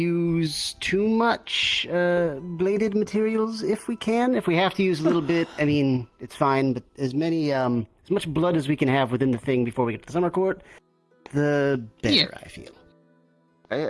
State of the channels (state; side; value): identical; both; correlation 1.00